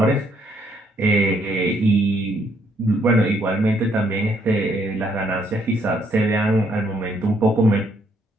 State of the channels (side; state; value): both; normal; correlation 0.70